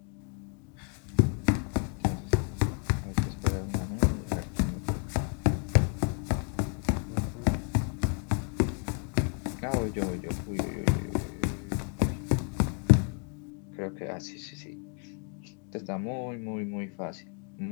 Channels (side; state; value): right; quieter; 39.6 dB